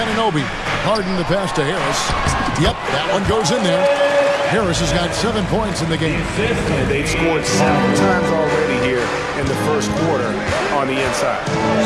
Harden the pass to Harris. Yep, that one goes in there. Harris has got 7 points in the game. And they've scored 7 times already here in the first quarter on the inside.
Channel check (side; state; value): both; identical; correlation 1.00